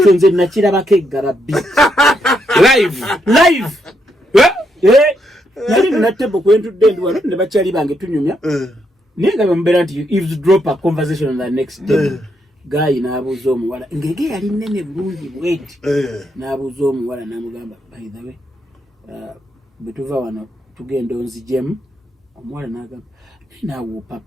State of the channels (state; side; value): normal; both; correlation 0.78